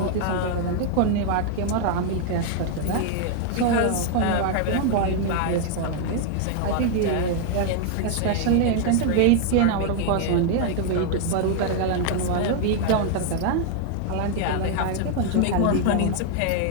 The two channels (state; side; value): different; both; correlation 0.00